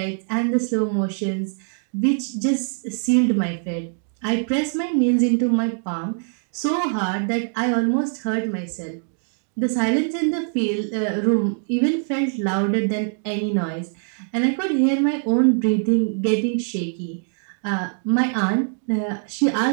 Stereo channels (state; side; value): silent; left; 64 dB below the other